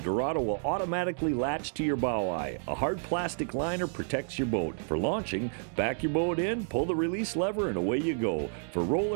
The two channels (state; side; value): silent; left; 58 dB below the other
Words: will automatically latch to your bow eye. A hard plastic liner protects your boat. For launching, back your boat in, pull the release lever, and away you go. For